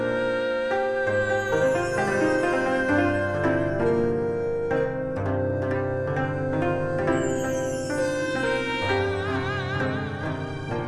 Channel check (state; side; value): identical; both; correlation 1.00